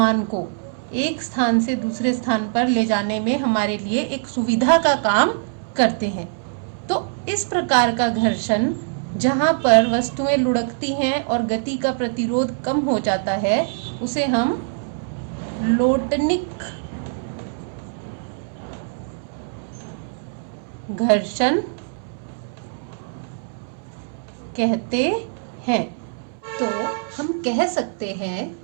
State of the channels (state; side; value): silent; left; 64 dB below the other